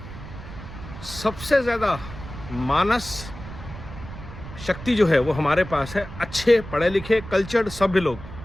सबसे ज़्यादा मानस शक्ति जो है वो हमारे पास है। अच्छे पढ़े लिखे कल्चर्ड सभ्य लोग।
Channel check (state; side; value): noise; right; rumble, 13 dB below the sound